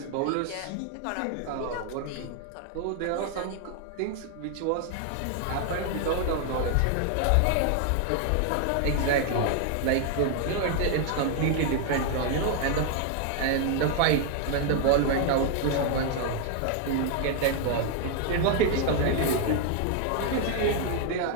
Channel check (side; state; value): both; different; correlation 0.00